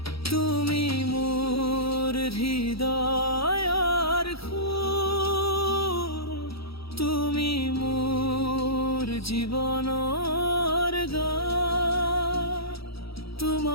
তুমি মোৰ হৃদয়ৰ সুৰ, তুমি মোৰ জীৱনৰ গান,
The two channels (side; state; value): right; late; 0.76 ms